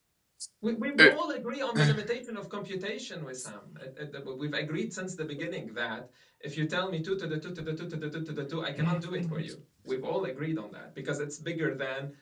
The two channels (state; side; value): identical; both; correlation 1.00